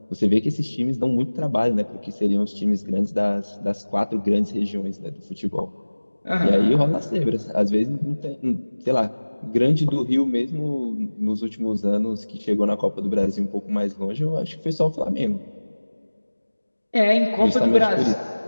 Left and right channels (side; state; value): both; inverted; correlation -1.00